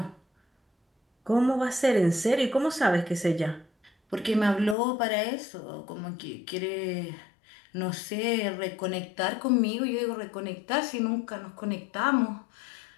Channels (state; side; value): drops out; right; at 4.8 s